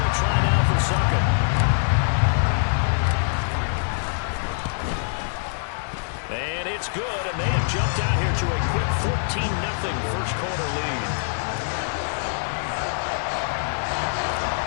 try now for Succop. And it's good, and they have jumped out here to a quick 14-0 first quarter lead.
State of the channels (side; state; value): right; silent; digital silence